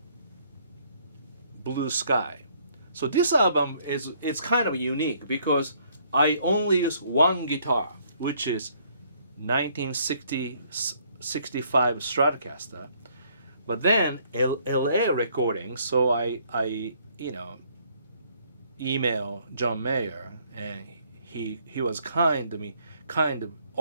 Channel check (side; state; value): both; inverted; correlation -0.65